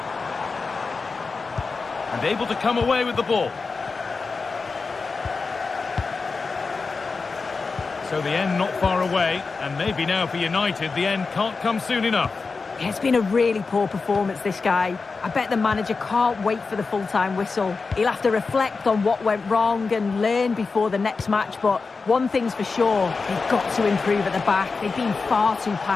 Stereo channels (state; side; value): quieter; right; 4.4 dB